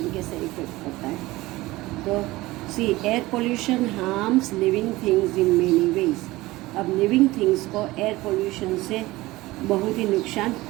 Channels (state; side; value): quieter; left; 19.2 dB